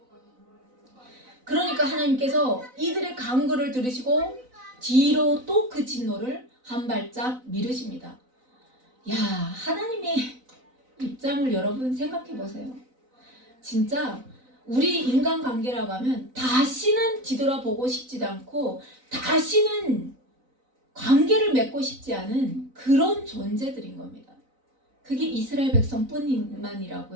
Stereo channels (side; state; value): left; late; 4.0 ms